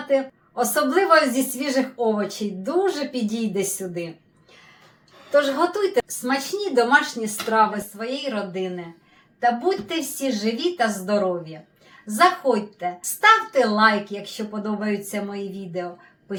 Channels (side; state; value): both; identical; correlation 1.00